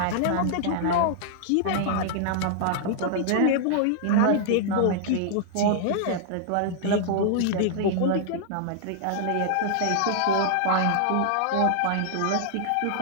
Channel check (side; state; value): both; different; correlation -0.01